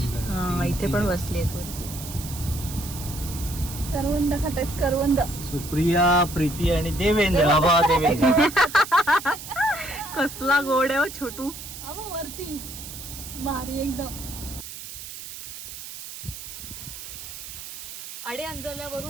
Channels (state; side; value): noise; right; hiss, 11 dB below the sound